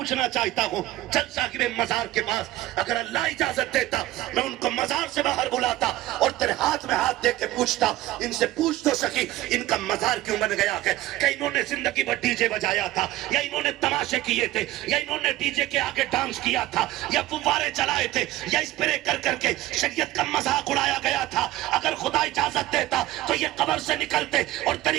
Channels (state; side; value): quieter; left; 16.3 dB